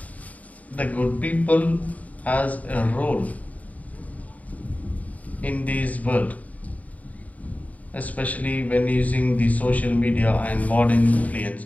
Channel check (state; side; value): late; right; 0.071 ms